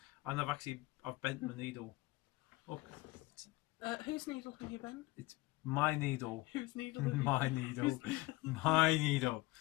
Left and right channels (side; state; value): right; quieter; 20.5 dB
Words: and I've bent my needle. Look. Whose needle have you bent? It's my needle. Whose needle have you My needle. My needle.